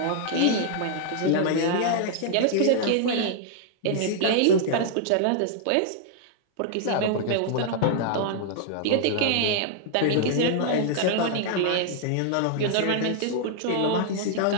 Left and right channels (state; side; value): different; both; correlation -0.01